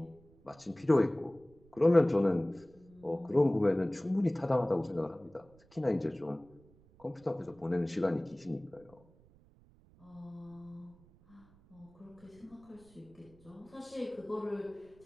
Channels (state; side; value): noise; right; rumble, 27 dB below the sound